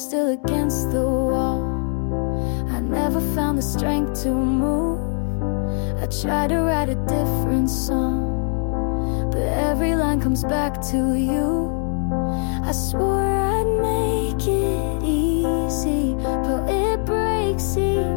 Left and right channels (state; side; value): silent; right; 58 dB below the other